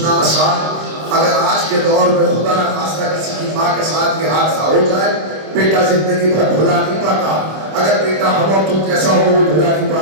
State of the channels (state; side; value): late; left; 26 ms